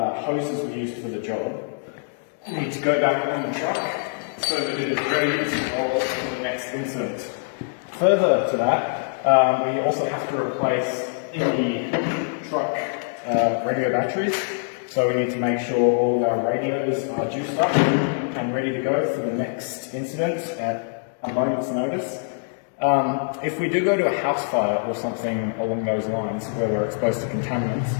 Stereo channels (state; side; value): silent; right; digital silence